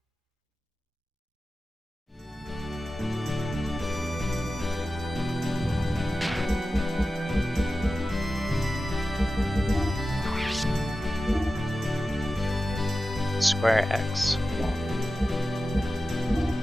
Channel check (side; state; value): both; normal; correlation 0.93